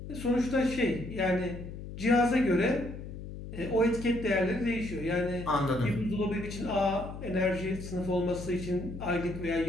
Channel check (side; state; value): left; noise; hum, 10 dB below the sound